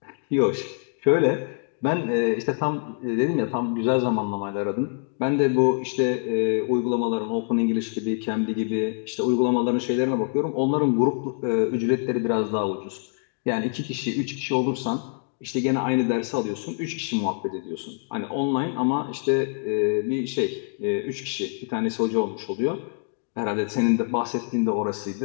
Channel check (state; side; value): silent; right; 62 dB below the other